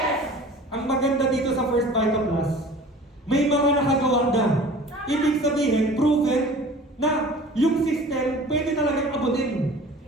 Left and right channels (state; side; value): normal; both; correlation 0.44